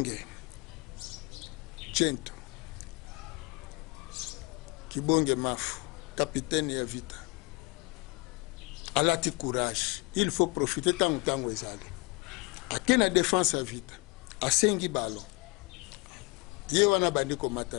Chento Kibonge Mafu capitaine ya vita alati courage il faut profiter tango ezali akena défense ya vita asengi balo ye wana bandi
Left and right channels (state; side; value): quieter; right; 27.3 dB